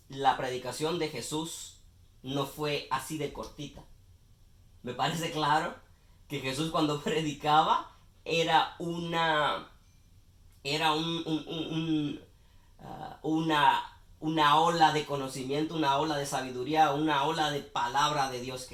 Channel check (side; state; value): both; identical; correlation 1.00